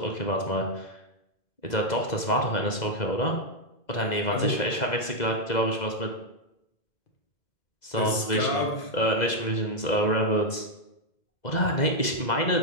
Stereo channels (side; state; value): right; late; 2.0 ms